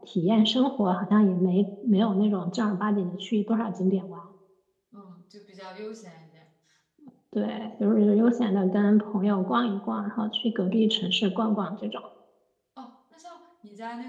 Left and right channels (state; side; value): identical; both; correlation 1.00